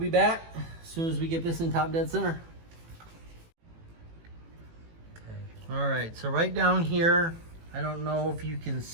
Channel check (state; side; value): late; left; 18 ms